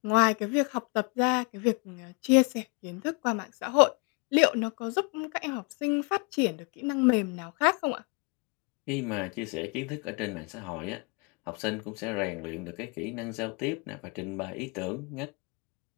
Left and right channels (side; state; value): right; quieter; 31.0 dB